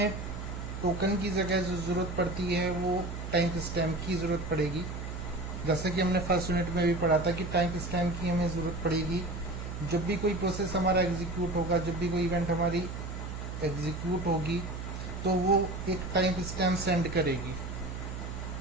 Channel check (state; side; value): noise; right; hum, 7 dB below the sound